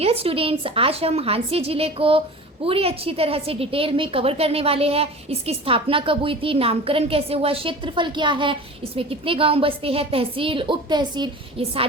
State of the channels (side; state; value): both; normal; correlation 0.37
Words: स्टूडेंट्स, आज हम हांसी जिले को पूरी अच्छी तरह से डिटेल में कवर करने वाले हैं। इसकी स्थापना कब हुई थी, नामकरण कैसे हुआ, क्षेत्रफल क्या है, इसमें कितने गांव बसते हैं, तहसील, उप तहसील, ये